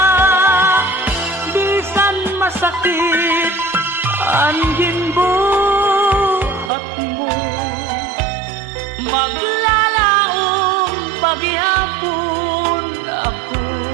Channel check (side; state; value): left; drops out; at 6.7 s